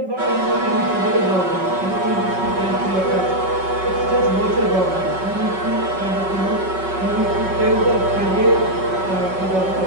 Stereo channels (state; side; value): late; left; 5.3 ms